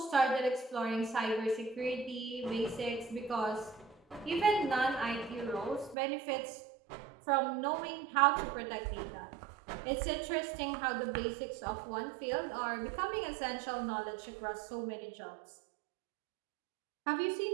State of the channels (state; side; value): drops out; left; at 6.0 s